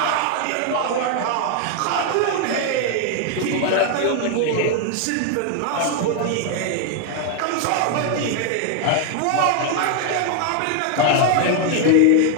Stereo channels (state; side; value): different; both; correlation 0.01